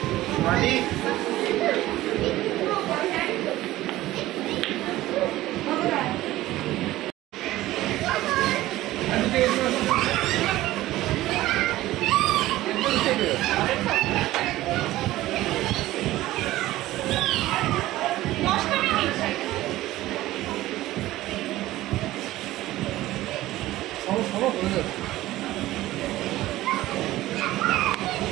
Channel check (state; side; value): quieter; left; 16.2 dB